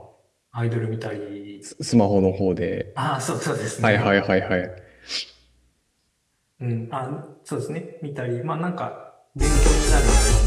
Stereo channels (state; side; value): identical; both; correlation 1.00